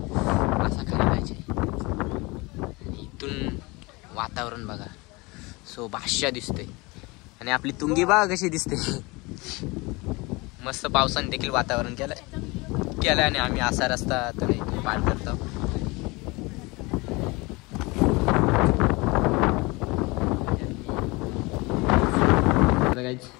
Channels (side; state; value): right; quieter; 25.0 dB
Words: असा खाली जायचे. इथून वातावरण बघा. सो बादशाह दिसतोय. आणि आपली तुंगी बघा कशी दिसते. मस्त पावसाने देखील वातावरण केलं आणि आम्ही असा रस्ता तर इथून पार करतो.